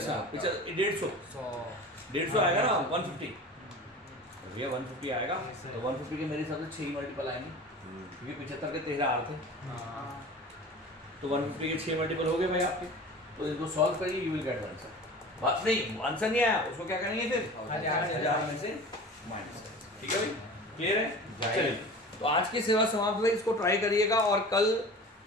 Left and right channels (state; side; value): normal; both; correlation 0.37